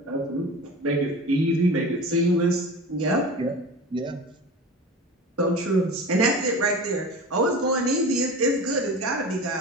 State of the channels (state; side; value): normal; both; correlation 0.33